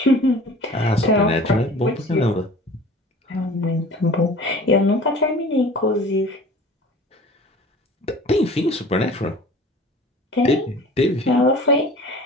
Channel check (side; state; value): both; normal; correlation 0.43